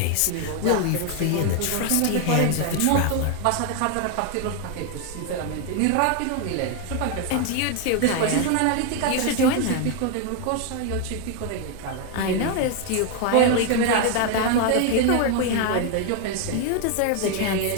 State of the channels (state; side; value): different; both; correlation 0.01